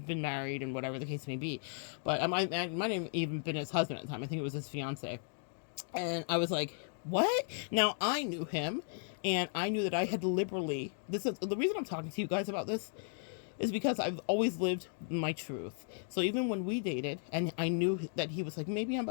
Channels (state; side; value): silent; right; 54 dB below the other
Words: married and whatever the case may be, but I might have even been his husband at the time. I think it was his fiance. And I was like, what? Now, I knew him, and I knew that I had liberally, this is the reason I'm talking to you guys about this, is because I've always lived my truth. So even when we dated, and I knew that he was like, maybe I'm